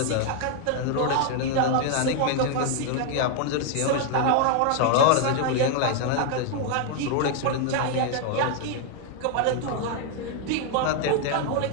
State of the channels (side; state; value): both; different; correlation 0.00